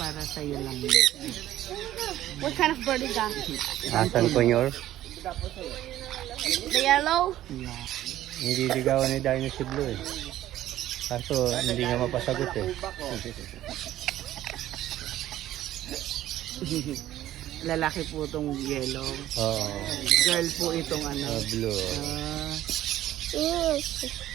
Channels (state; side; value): quieter; left; 13.5 dB